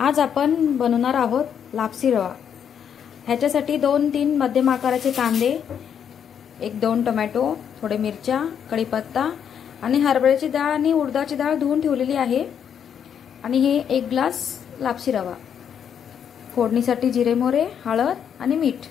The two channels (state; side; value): quieter; right; 8.2 dB